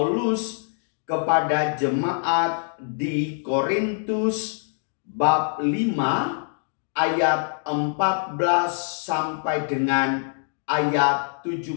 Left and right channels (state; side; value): silent; right; digital silence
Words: kepada jemaat di Korintus bab 5 ayat 14 sampai dengan ayat